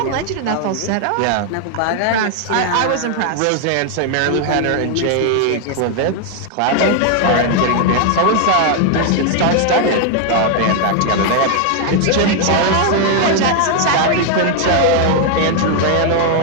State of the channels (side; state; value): both; different; correlation 0.00